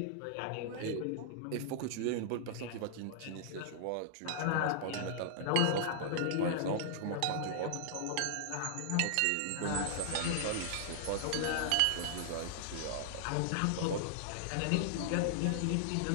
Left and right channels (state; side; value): different; both; correlation -0.01